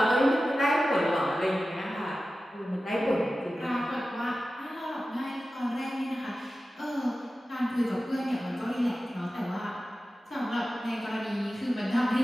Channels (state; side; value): normal; both; correlation 0.94